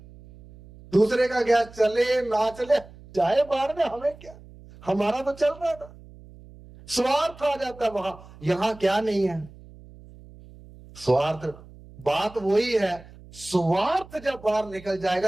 दूसरे का गैस चले ना चले, चाहे बाहर में, हमें क्या, हमारा तो चल रहा था। स्वार्थ आ जाता है वहां। यहां क्या नहीं है? स्वार्थ। बात वही है, स्वार्थ जब बाहर निकल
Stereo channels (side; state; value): right; noise; hum, 21 dB below the sound